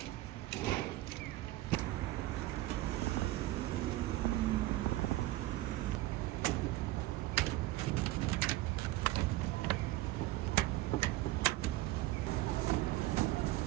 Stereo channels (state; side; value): quieter; left; 17.1 dB